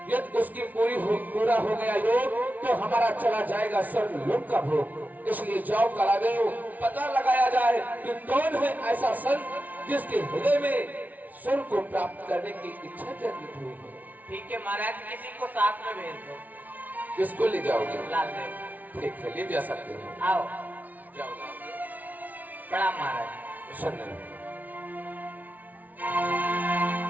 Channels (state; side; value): late; left; 0.076 ms